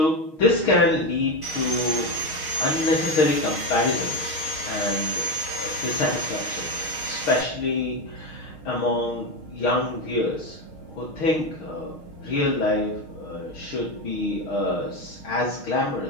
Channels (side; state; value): right; late; 6.4 ms